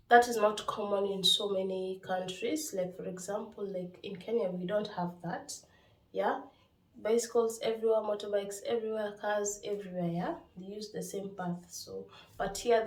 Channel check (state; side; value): identical; both; correlation 1.00